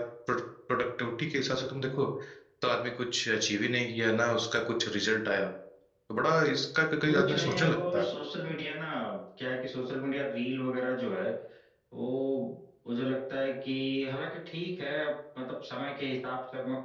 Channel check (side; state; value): both; identical; correlation 1.00